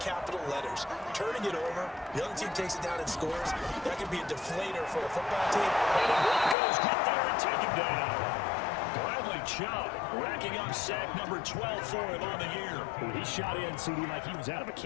capital letters. Turning it over, the other team takes it down and scores. That could be a deflator for a football team. And the Broncos get there and take him down. Bradley Chubb, racking up sack number 12 for him on the year. He shot in, CD, like he was out of a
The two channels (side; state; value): right; drops out; at 6.6 s